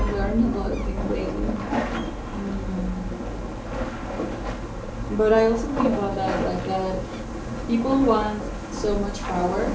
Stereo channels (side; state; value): both; identical; correlation 1.00